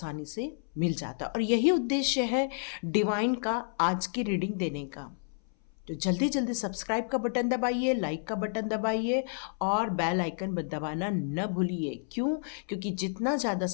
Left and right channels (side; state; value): right; silent; 58 dB below the other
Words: से मिल जाता है। और यही उद्देश्य है डिवाइन का आज की रीडिंग देने का। तो जल्दी जल्दी सब्सक्राइब का बटन दबाइए, लाइक का बटन दबाइए, और बेल आइकन दबाना न भूलिए। क्यों? क्योंकि जितना ज़्यादा